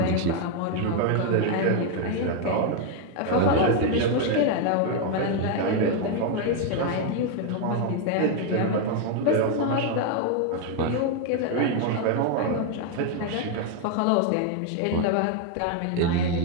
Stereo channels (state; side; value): different; both; correlation 0.01